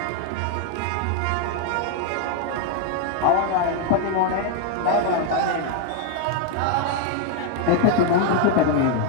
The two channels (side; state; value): both; different; correlation 0.00